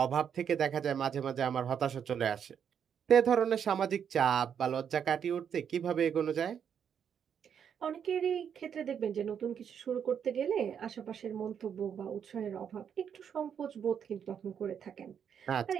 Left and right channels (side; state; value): left; quieter; 8.0 dB